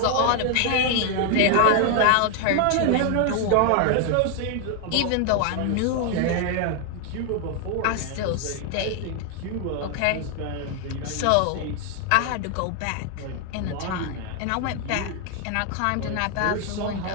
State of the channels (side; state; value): both; different; correlation 0.00